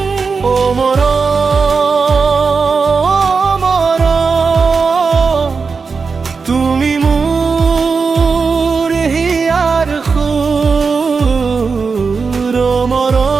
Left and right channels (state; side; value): quieter; left; 4.9 dB